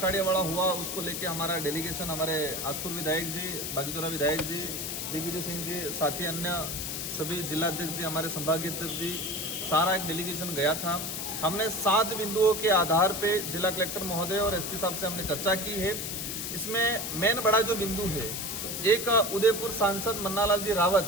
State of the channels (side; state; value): left; noise; hiss, 4 dB below the sound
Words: हुआ उसको लेके हमारा डेलीगेशन हमारे आसपुर विधायक जी, बागीदोरा विधायक जी, दिग्विजय सिंह जी, साथी अन्य सभी जिलाध्यक्ष जी, हमारे संभागीय अध्यक्ष जी, सारा एक डेलीगेशन गया था। हमने 7 बिंदुओं के आधार पे जिला कलेक्टर महोदय और एसपी साहब से हमने चर्चा की है। इसमें मेन बड़ा जो बिंदु है, एक उदयपुर सांसद मन्नालाल जी